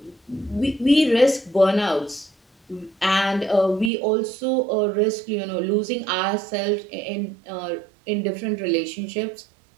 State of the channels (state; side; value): drops out; left; at 3.9 s